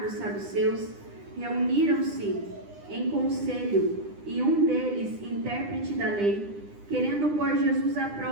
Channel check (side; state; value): left; late; 9.9 ms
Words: os saduceus, reuniram-se em conselho, e um deles, intérprete da lei, querendo pôr Jesus à